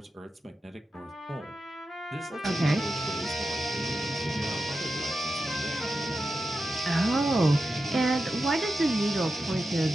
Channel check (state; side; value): normal; both; correlation 0.91